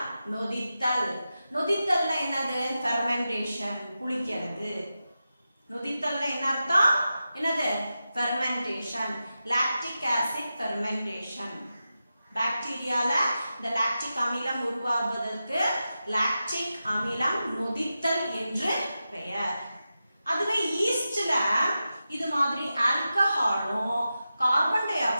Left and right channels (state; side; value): inverted; both; correlation -0.92